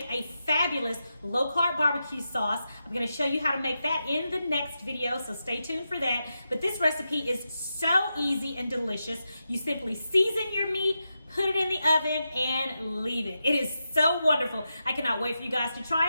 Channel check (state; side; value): inverted; both; correlation -0.88